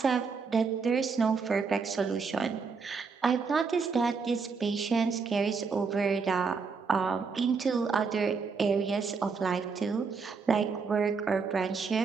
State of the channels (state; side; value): quieter; left; 5.1 dB